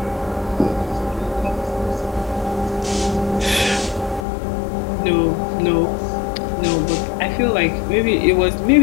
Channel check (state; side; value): drops out; right; at 4.2 s